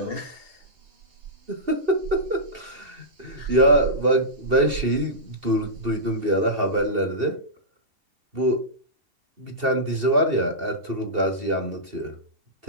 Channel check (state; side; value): late; left; 2.7 ms